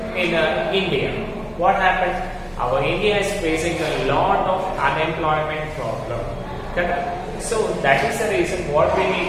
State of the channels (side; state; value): both; identical; correlation 1.00